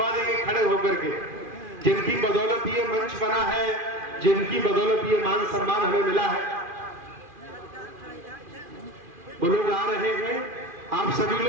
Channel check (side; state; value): left; late; 2.4 ms